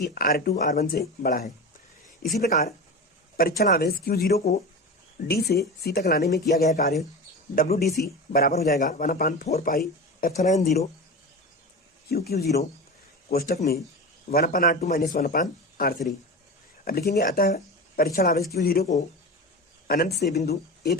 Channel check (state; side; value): normal; both; correlation 0.27